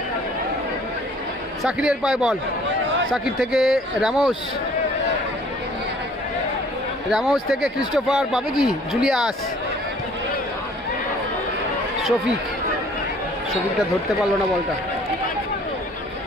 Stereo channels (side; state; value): both; normal; correlation 0.55